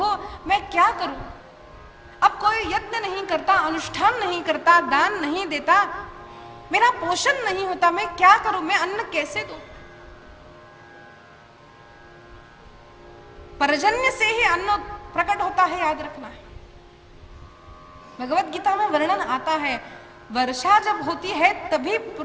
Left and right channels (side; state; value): both; identical; correlation 1.00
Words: मैं क्या करूं? अब कोई यत्न नहीं करता, अनुष्ठान नहीं करता, दान नहीं देता, मेरा पोषण नहीं होता, मैं क्या करूं? मैं अन्न कैसे दूं? पर्जन्य से ही अन्न प्रकट होता है, याद रखना है। भगवत गीता में वर्णन आता है, वर्षा जब होती है तभी